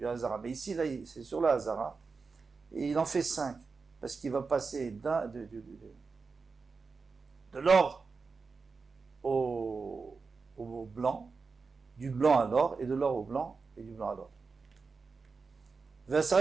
Hazara. Mais ici là, c'est sur la Hazara et il en fait 5 parce qu'il va passer de l'or au blanc, du blanc à l'or et de l'or au blanc et du blanc à l'or.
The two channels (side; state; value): left; quieter; 4.6 dB